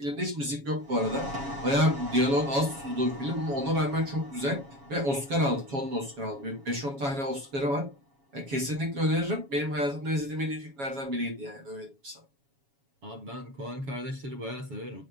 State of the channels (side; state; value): left; late; 7.2 ms